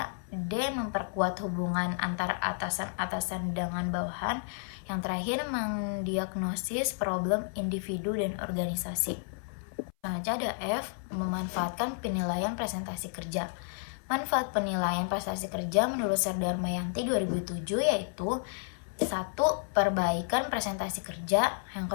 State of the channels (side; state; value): right; silent; 57 dB below the other